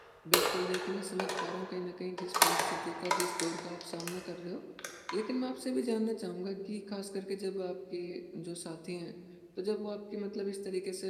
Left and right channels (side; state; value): both; identical; correlation 1.00